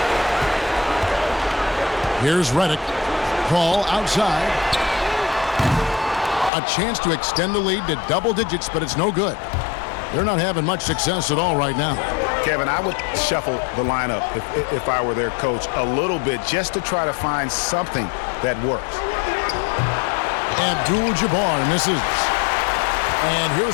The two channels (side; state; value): right; drops out; at 6.5 s